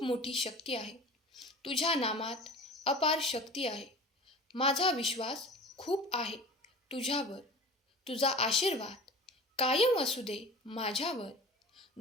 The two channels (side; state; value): both; normal; correlation 0.38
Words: मोठी शक्ती आहे. तुझ्या नामात अपार शक्ती आहे. माझा विश्वास खूप आहे तुझ्यावर. तुझा आशीर्वाद कायम असू दे माझ्यावर.